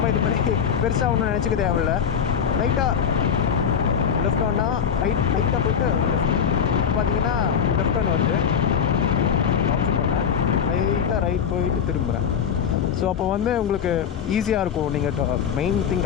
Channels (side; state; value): right; quieter; 7.6 dB